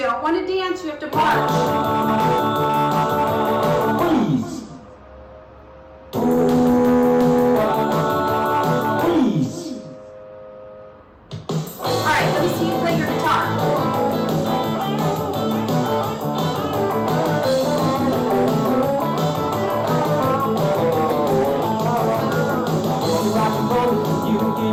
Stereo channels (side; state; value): both; identical; correlation 1.00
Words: don't want to dance, you have to march. Freeze. Freeze. All right, let me see you play your guitar. You can